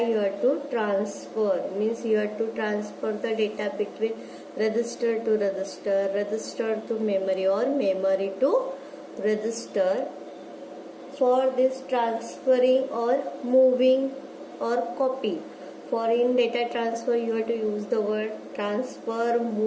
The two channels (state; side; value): identical; both; correlation 1.00